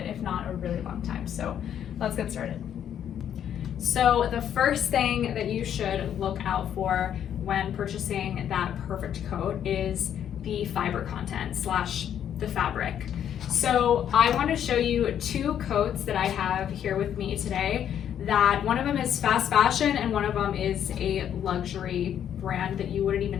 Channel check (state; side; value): quieter; right; 9.6 dB